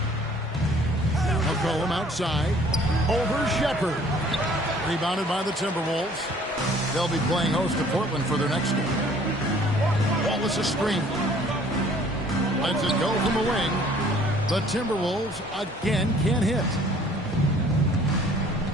McCollum outside. Over Shepherd. Rebounded by the Timberwolves. They'll be playing host to Portland for their next game. Wallace a screen. Lets it go from the wing. The Timberwolves again can't hit.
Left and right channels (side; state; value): both; normal; correlation 0.55